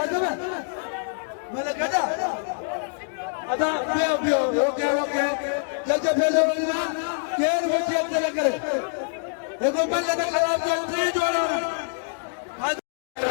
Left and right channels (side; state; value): right; silent; digital silence